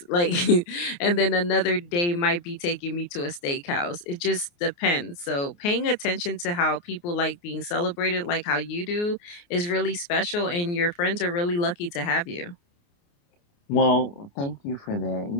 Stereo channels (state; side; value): late; right; 29 ms